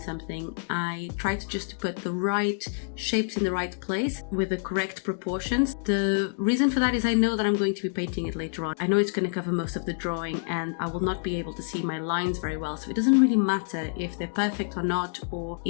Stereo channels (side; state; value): right; silent; digital silence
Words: something, I try to just put the right shapes in the right place with the correct proportions. The reason for that is I know that I'm going to be painting it later on. I know it's going to cover most of the drawing and I will not be able to see my lines very well. So it doesn't really matter if they're perfect or not, or